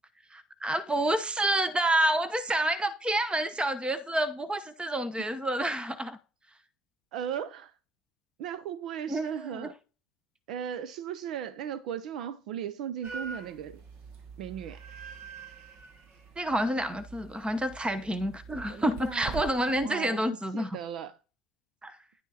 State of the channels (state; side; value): normal; both; correlation 0.69